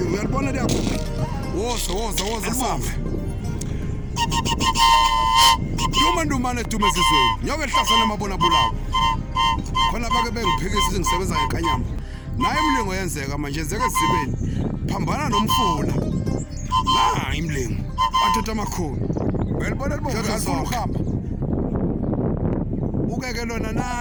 uyalibona liyakho woza sambe ndumandumane dumeza izweni nyoke hlasana emabona bulawo khona bake bengiphikisa ngisebenza ngenkanyamba naye imlingo yenzeka manje yenzeka ezibeni phambana nomfula la imlingo wadoda amakhulu uyalibona libomvu alifuna ukuhamba ukeke lona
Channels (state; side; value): identical; both; correlation 1.00